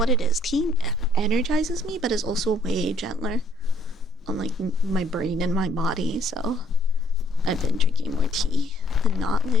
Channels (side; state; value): both; normal; correlation 0.64